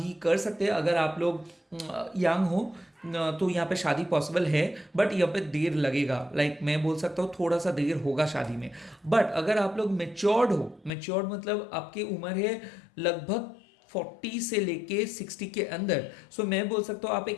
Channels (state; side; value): drops out; right; at 10.9 s